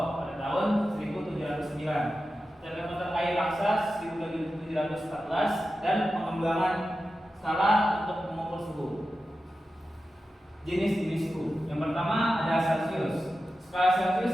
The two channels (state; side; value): normal; both; correlation 0.92